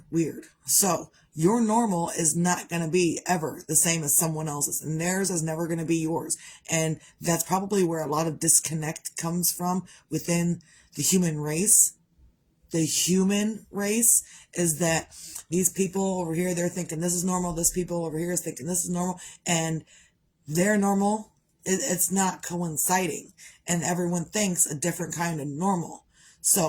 So your normal is not going to be ever the same as someone else's, and theirs is never going to be yours. And that's probably where a lot of disconnect comes from within the human race. The human race is that these people over here, they're thinking this is normal. This people over here is thinking this is normal. And their normal, it's not coinciding. And everyone thinks a different kind of normal.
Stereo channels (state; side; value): identical; both; correlation 1.00